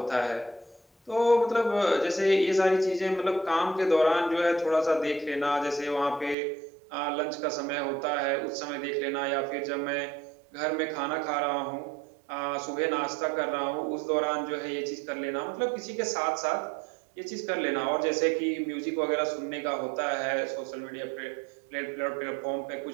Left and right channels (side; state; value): left; drops out; at 6.4 s